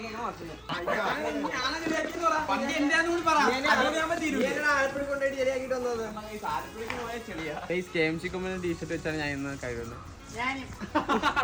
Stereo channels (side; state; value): both; identical; correlation 1.00